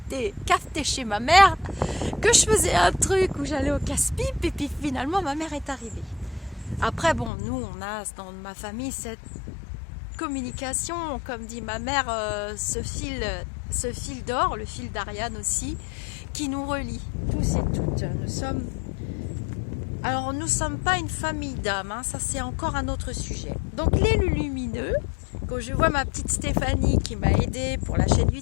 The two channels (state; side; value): drops out; right; at 7.3 s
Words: cafeté chez ma mère, que je faisais un truc où j'allais au casse-pipe et puis finalement ma mère est arrivée. Après, bon, nous, on a dans ma famille cette communication, comme dit ma mère, ce fil d'or, le fil d'Ariane aussi, qui nous relie, tous et toutes. Alors, nous ne sommes pas une famille d'âmes, hein, ça c'est encore un autre sujet. Donc, les lumineux, quand je vois ma petite Stéphanie qui m'a aidée pour la chaîne